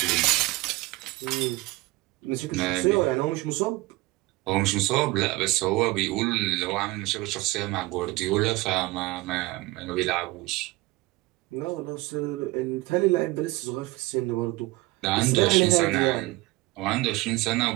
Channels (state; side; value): quieter; left; 20.9 dB